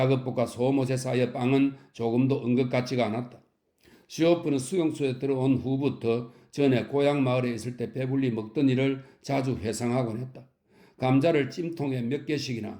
소옷에 쌓여 빵은 조금도 은것 같지가 않았다. 슈오프는 수용소에 들어온 후부터 전에 고향 마을에 있을 때 배불리 먹던 일을 자주 회상하곤 했다. 감자를 찜통에 몇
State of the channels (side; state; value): both; identical; correlation 1.00